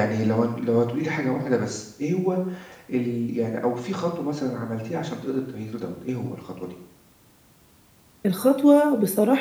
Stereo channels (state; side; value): identical; both; correlation 1.00